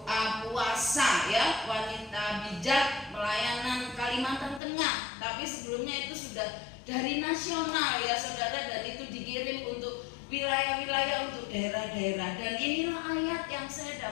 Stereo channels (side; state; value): right; drops out; at 4.6 s